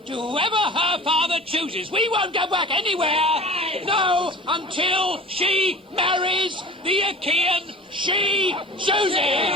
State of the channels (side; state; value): both; normal; correlation 0.39